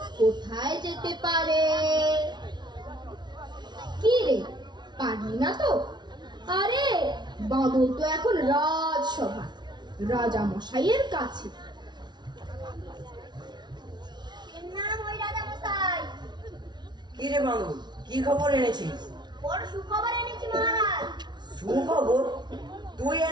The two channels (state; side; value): late; left; 0.21 ms